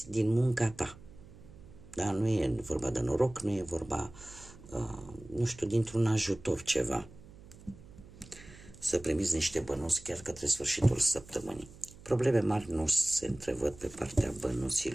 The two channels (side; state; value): right; noise; hum, 20 dB below the sound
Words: din munca ta. Da? Nu e vorba de noroc, nu e vorba, nu știu, dintr-un ajutor ceva. Să primiți niște bănuți chiar către sfârșitul săptămânii. Probleme mari nu se întrevăd pe partea